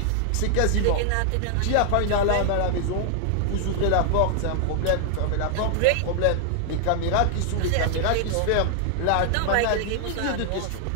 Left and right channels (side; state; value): both; different; correlation 0.00